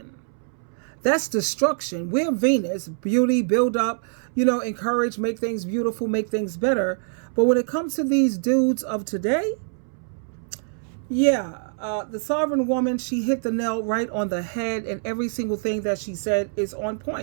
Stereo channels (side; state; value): left; silent; 62 dB below the other